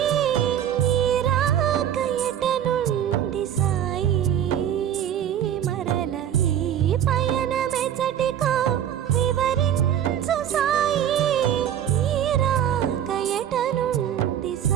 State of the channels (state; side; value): quieter; left; 10.1 dB